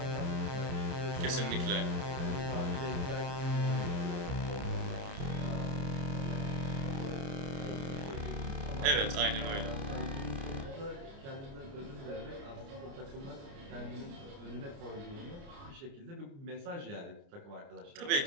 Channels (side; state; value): left; late; 29 ms